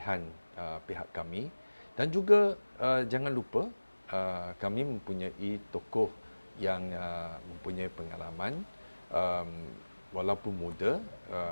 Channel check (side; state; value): both; inverted; correlation -1.00